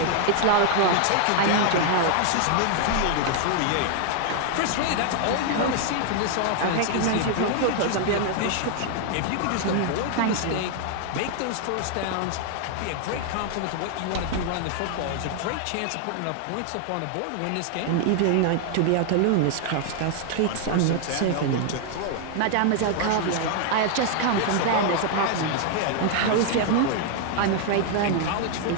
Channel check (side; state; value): both; different; correlation 0.00